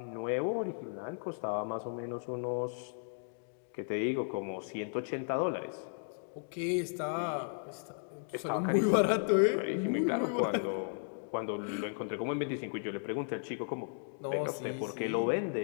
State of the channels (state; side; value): silent; right; digital silence